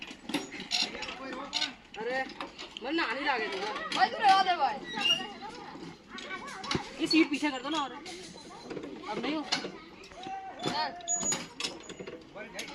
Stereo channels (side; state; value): both; identical; correlation 1.00